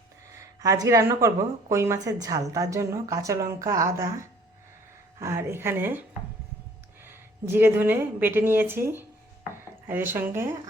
আজকে রান্না করব কই মাছের ঝাল। তার জন্য কাঁচা লঙ্কা, আদা আর এখানে জিরে ধনে বেটে নিয়েছি, আর এর সঙ্গে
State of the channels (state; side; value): normal; both; correlation 0.56